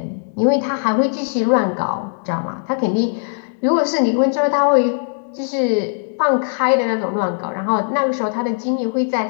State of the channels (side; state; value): right; silent; digital silence